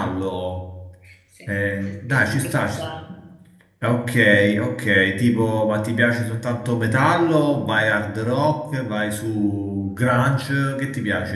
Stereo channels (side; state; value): both; identical; correlation 1.00